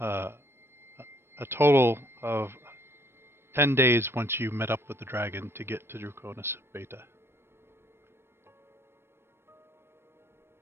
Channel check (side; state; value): left; late; 0.12 ms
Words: a total of 10 days once you met up with the dragon to get to Draconis Beta.